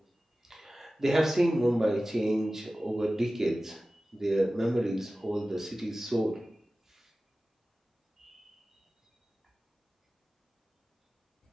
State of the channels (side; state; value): both; normal; correlation 0.96